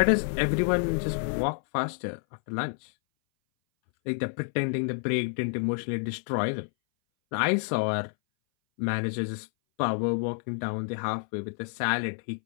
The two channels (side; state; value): right; silent; 59 dB below the other